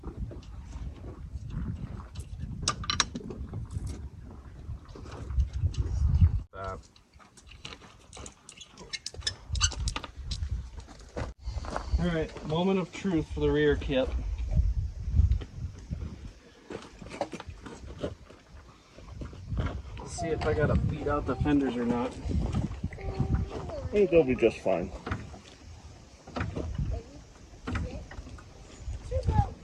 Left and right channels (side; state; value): both; identical; correlation 1.00